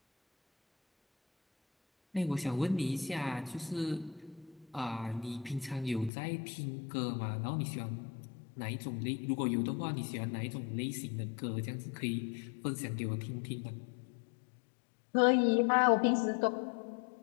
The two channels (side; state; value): right; drops out; at 6.1 s